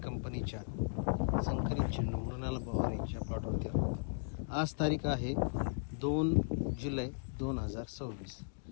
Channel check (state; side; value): silent; right; digital silence